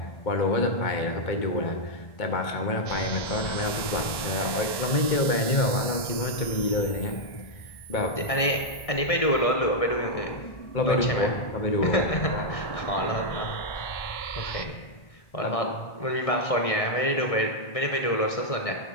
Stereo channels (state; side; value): late; right; 1.6 ms